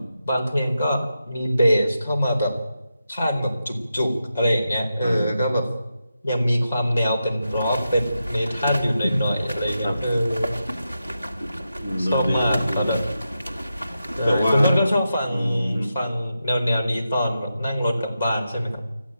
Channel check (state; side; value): inverted; both; correlation -0.88